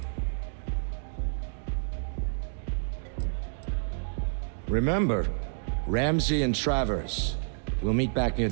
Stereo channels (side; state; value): left; silent; digital silence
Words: Remember, Ramsey and Travers. We'll meet back near